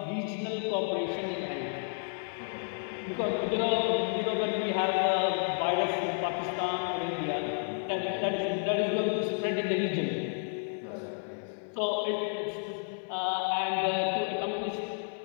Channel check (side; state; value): right; silent; digital silence